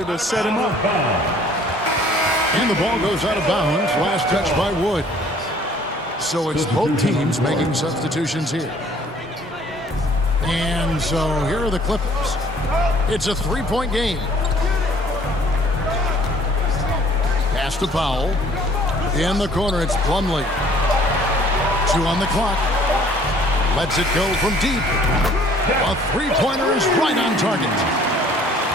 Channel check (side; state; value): both; normal; correlation 0.56